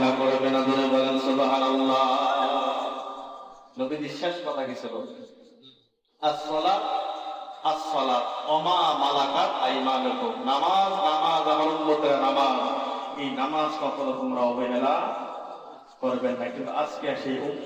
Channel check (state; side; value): identical; both; correlation 1.00